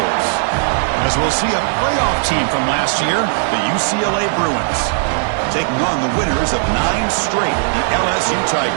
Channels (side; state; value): left; silent; digital silence